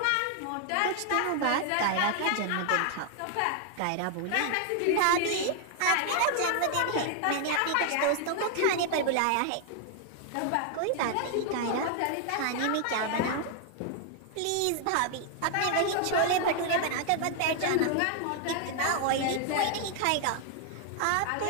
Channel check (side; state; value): both; different; correlation 0.00